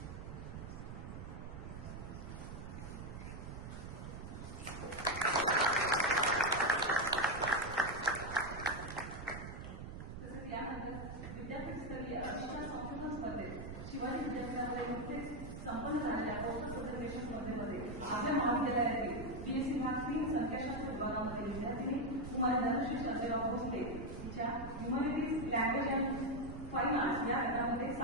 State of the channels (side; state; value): right; noise; rumble, 9 dB below the sound